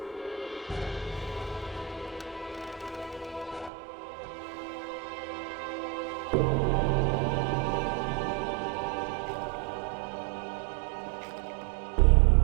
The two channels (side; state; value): left; drops out; at 3.7 s